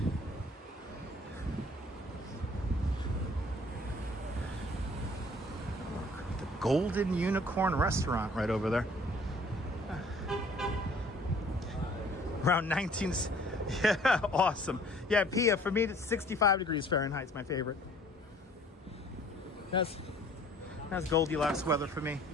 Golden Unicorn Restaurant right over there. Around 19... Yeah, awesome. Yeah, Pia, for me, it's 65 degrees Fahrenheit. It's my favorite. That's Goldilocks weather for me.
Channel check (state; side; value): normal; both; correlation 0.55